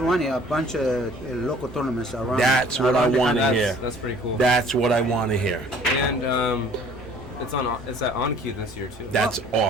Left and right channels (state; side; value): normal; both; correlation 0.53